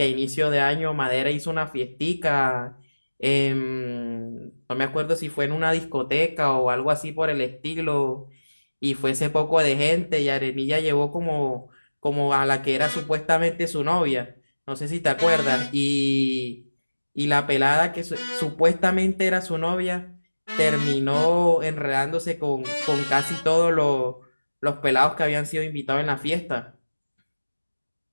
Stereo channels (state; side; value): inverted; both; correlation -1.00